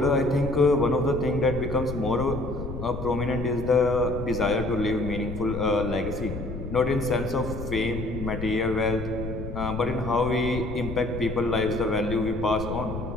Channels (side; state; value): left; noise; rumble, 7 dB below the sound